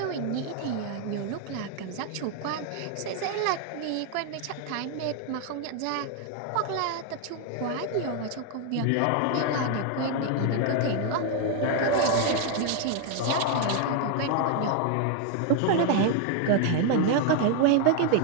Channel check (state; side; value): different; both; correlation 0.00